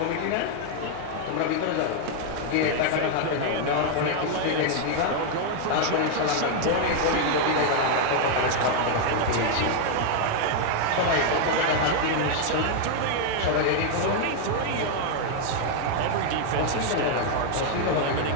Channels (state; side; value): different; both; correlation 0.00